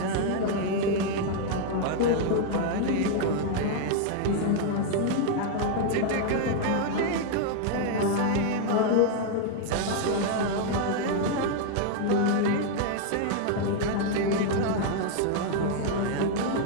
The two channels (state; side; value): different; both; correlation 0.00